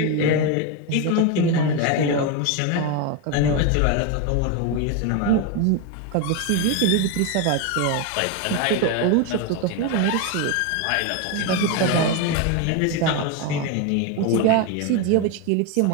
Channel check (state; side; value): different; both; correlation 0.02